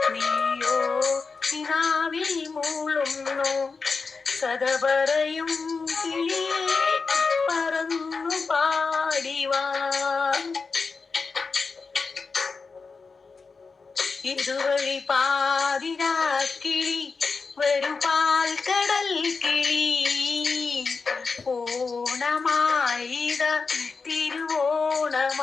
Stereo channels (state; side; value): quieter; right; 4.6 dB